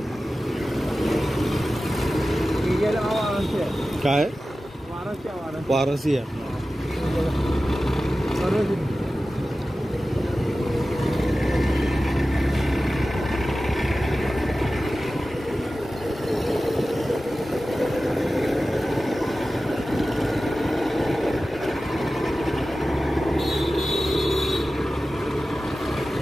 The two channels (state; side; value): normal; both; correlation 0.95